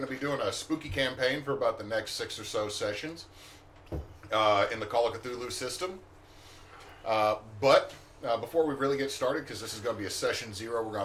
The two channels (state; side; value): identical; both; correlation 1.00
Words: to be doing a spooky campaign for about the next 6 or so sessions in the Call of Cthulhu system. But before we really get started, because this is going to be a session 0, we're